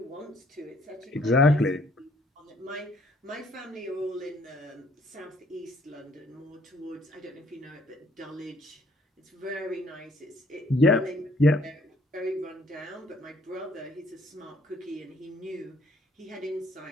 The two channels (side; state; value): both; normal; correlation 0.63